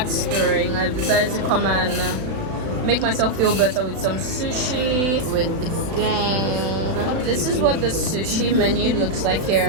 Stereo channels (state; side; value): late; left; 36 ms